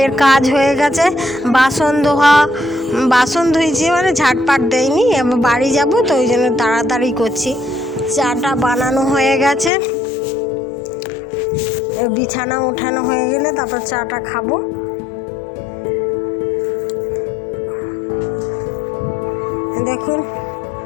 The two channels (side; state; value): right; drops out; at 9.7 s